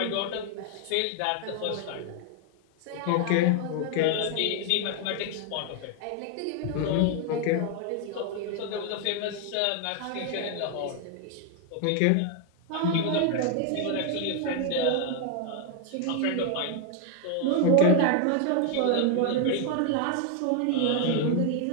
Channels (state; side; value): different; both; correlation 0.01